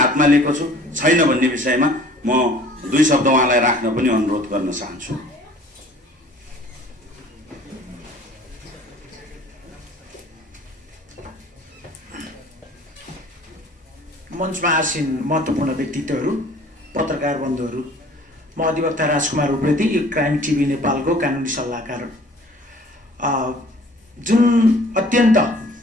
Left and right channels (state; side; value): normal; both; correlation 0.51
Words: लिएको छु छैन भन्ने विषयमा म 2 शब्द उहाँलाई राख्न पनि अनुरोध गर्न चाहन्छु। मञ्चमा आसीन महत्त्वपूर्ण व्यक्तित्वहरू, पत्रकार बन्धुहरू, म अधिवक्ता राजकुमार उप्रेती, क्राइम टिभी नेपालको कानुनी सल्लाहकार। जुन अत्यन्त